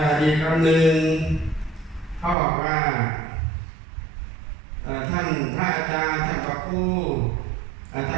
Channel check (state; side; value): drops out; left; at 2.4 s